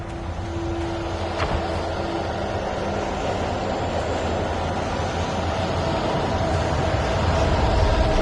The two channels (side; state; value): both; identical; correlation 1.00